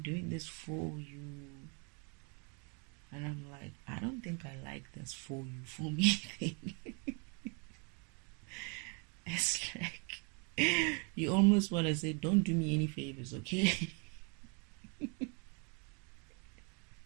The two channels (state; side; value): quieter; left; 35.2 dB